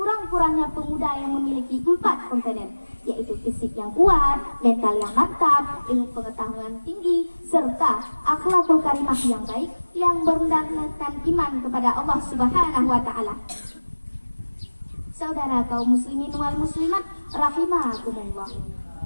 pemuda yang memiliki 4 komponen, yaitu fisik yang kuat, mental yang mantap, ilmu pengetahuan tinggi, serta akhlakul karimah yang baik yang berdasarkan iman kepada Allah Subhanahu wa Ta'ala. Saudara kaum muslimin wal muslimat rahimakumullah.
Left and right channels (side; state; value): both; inverted; correlation -1.00